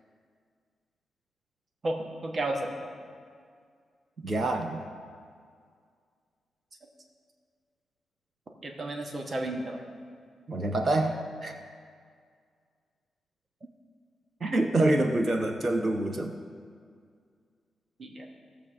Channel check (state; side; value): normal; both; correlation 0.88